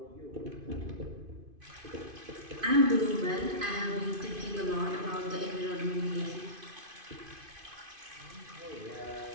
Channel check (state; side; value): late; left; 2.5 ms